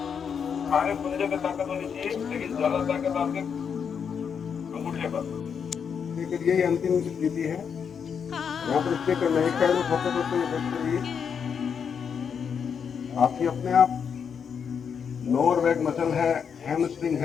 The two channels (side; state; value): right; quieter; 7.0 dB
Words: सारे पंजे पे ताकत होनी चाहिए, लेकिन ज्यादा ताकत आपके अंगूठे पर। यही अंतिम स्थिति है, यहाँ पर स्टे करना है, एक साइड में फोकस होते हुए बैठ करिए। आपकी अपने आप लोअर बैक मसल है, हैमस्ट्रिंग